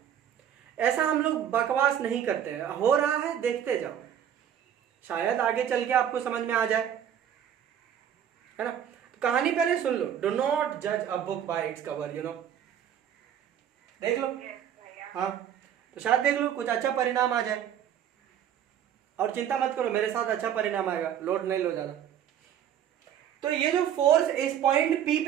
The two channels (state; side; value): quieter; left; 9.6 dB